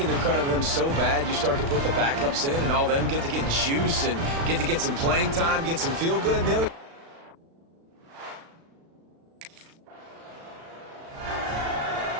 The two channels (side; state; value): left; late; 36 ms